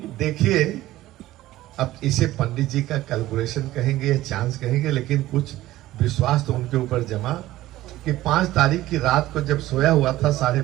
देखिए अब इसे पंडित जी का कैलकुलेशन कहेंगे या चांस कहेंगे, लेकिन कुछ विश्वास तो उनके ऊपर जमा कि 5 तारीख की रात को जब सोया हुआ था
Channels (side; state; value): left; quieter; 15.8 dB